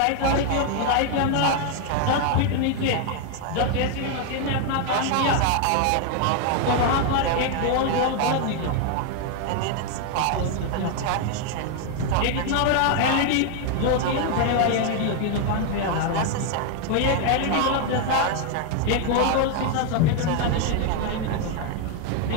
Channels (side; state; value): both; different; correlation 0.01